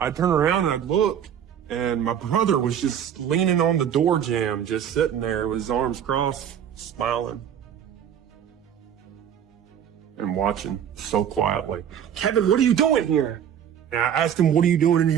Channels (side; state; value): left; quieter; 9.1 dB